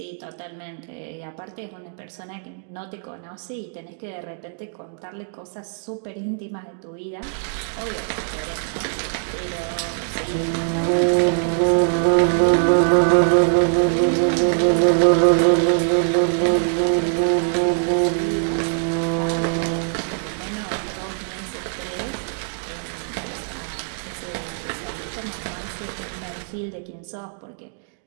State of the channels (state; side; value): silent; left; digital silence